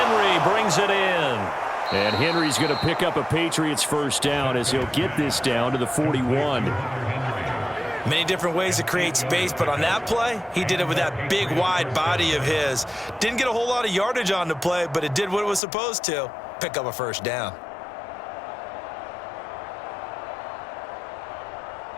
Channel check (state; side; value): drops out; right; at 15.6 s